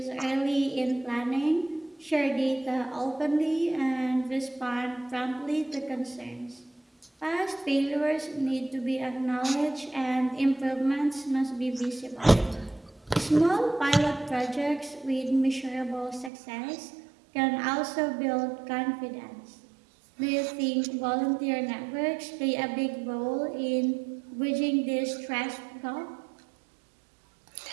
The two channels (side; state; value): left; drops out; at 16.3 s